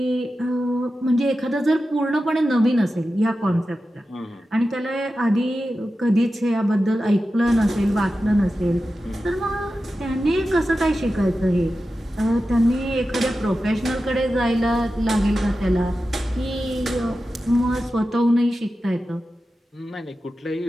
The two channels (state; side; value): normal; both; correlation 0.92